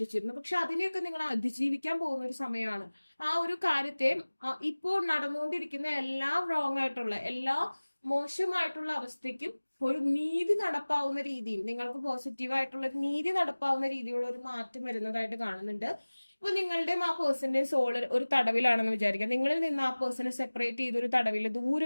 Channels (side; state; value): both; inverted; correlation -1.00